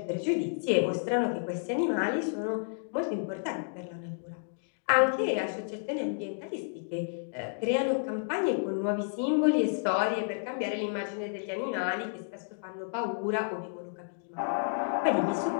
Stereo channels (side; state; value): right; silent; digital silence